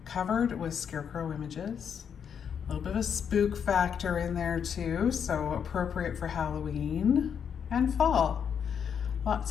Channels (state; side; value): quieter; right; 7.6 dB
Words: Covered with scarecrow images, a little bit of a spook factor in there too, so appropriate for Halloween and fall.